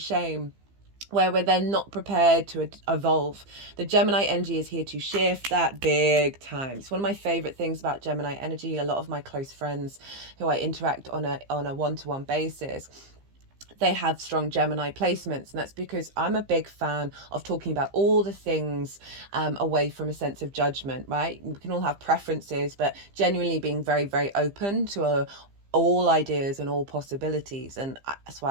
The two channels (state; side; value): late; left; 15 ms